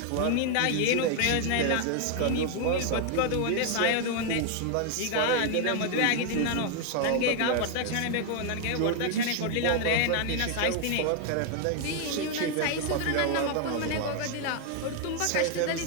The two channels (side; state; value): both; different; correlation 0.00